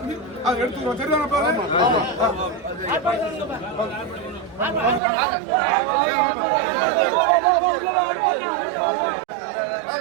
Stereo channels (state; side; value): drops out; left; at 5.0 s